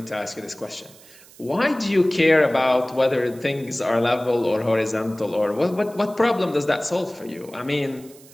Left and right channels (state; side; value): noise; right; hiss, 23 dB below the sound